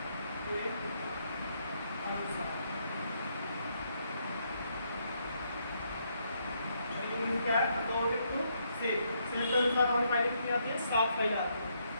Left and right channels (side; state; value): both; inverted; correlation -0.75